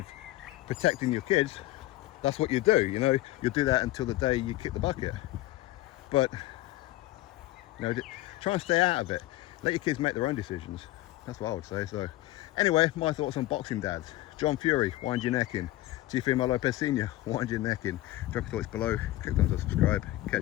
protecting your kids. That's what you do, you know. You'll do that until the day you kick the bucket. But, you know, try and stay out of it. Let your kids make their own decisions. That's what I would say. So, anyway, my thoughts on boxing dads. John Fury, wind your neck in. Teofimo Lopez Sr., wind your neck in. Drop your thoughts below. Click on subscribe.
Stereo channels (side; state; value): right; quieter; 16.6 dB